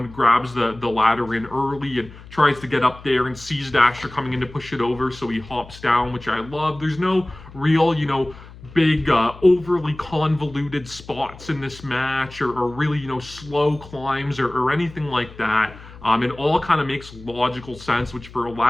grabs the ladder in early and tries to get up there and sees Dasher coming in to push it over, so he hops down, which I love. There's no real, big, overly convoluted spots in this match or really, slow climbs or anything like that. It all kind of makes logical sense, which for a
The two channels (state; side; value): noise; left; hum, 18 dB below the sound